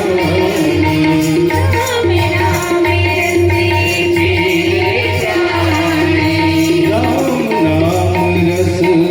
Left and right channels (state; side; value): identical; both; correlation 1.00